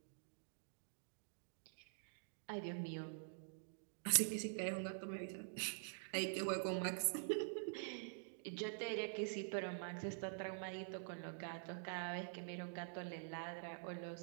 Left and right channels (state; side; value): silent; left; digital silence